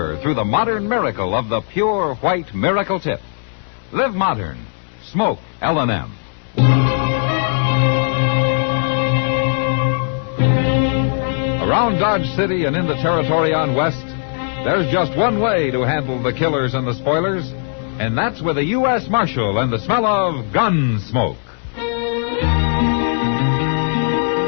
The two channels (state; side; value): silent; right; digital silence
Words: through the modern miracle of the pure white Miracle Tip. Live modern. Smoke L&M. Around Dodge City and in the territory on West, there's just one way to handle the killers and the spoilers, and that's with a U.S. Marshal and the smell of Gunsmoke.